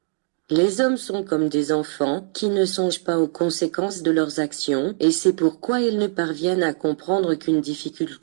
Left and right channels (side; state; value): left; silent; 63 dB below the other